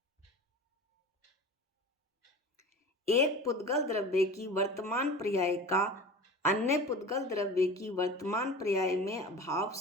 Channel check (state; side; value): normal; both; correlation 0.36